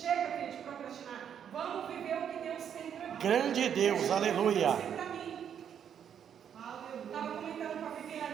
tempo de procrastinar. Vamos viver o que Deus tem preparado. Grande Deus, aleluia. Estava comentando com a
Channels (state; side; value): quieter; left; 8.6 dB